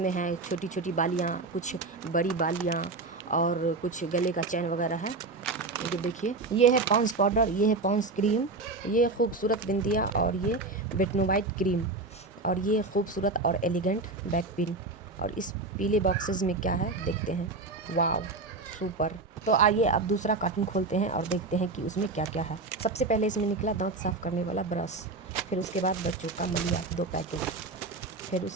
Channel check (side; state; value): left; quieter; 3.5 dB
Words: है छोटी छोटी बालियाँ, कुछ बड़ी बालियाँ और कुछ गले का चैन वगैरह है। ये देखिए, ये है पॉन्स पाउडर, ये है पॉन्स क्रीम, ये खूबसूरत बिंदिया और ये बेटनोवाइट क्रीम और ये खूबसूरत और एलिगेंट बैक पिन। और इस पीले बॉक्सेस में क्या है देखते हैं। वाव, सुपर। तो आइए अब दूसरा कार्टून खोलते हैं और देखते हैं कि उसमें क्या क्या है। सबसे पहले इसमें निकला दांत साफ़ करने वाला ब्रश, फिर उसके बाद बच्चों का मलिया 2 पैकेट, फिर